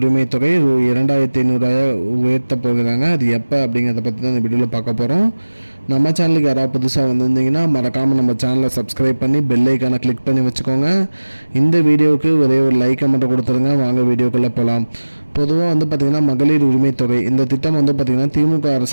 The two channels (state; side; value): inverted; both; correlation -1.00